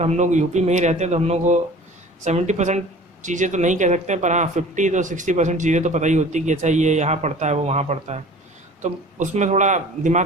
हम लोग यूपी में ही रहते हैं, तो हम लोग को 70% चीज़ें तो नहीं कह सकते, पर हाँ 50 to 60% चीज़ें तो पता ही होती कि अच्छा ये यहाँ पढ़ता है वो वहाँ पढ़ता है, तो उसमें थोड़ा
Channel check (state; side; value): normal; both; correlation 0.44